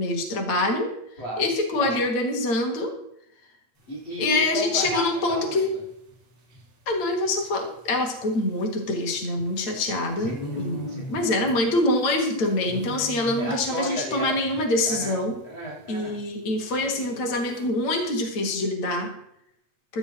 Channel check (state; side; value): late; right; 8.8 ms